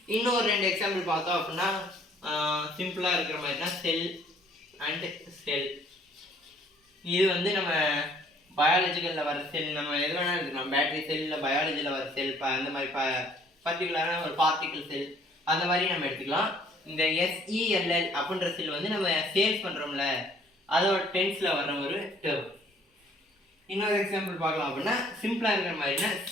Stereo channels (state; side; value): normal; both; correlation 0.59